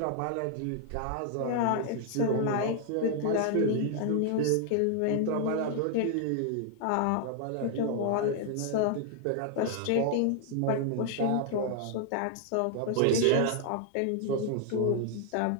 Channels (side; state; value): both; different; correlation 0.00